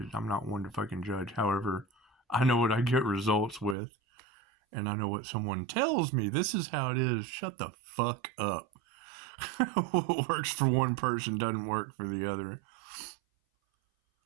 I'm not one to fucking judge. However, I know what I get results with. And I know what someone tells me. This is how it is. Shut the fuck up. What works for one person doesn't work for the other.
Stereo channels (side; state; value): left; drops out; at 3.8 s